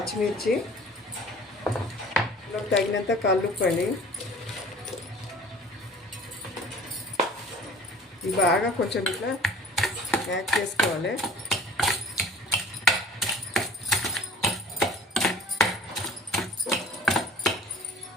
తగినంత కల్లుప్పు అండి. ఇవి బాగా కొంచెం ఇట్లా యాడ్ చేసుకోవాలి.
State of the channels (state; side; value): normal; both; correlation 0.47